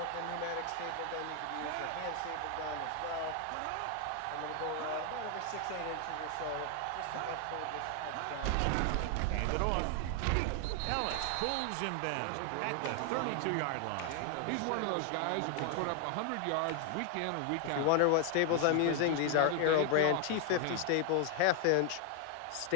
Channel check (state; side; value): different; both; correlation 0.00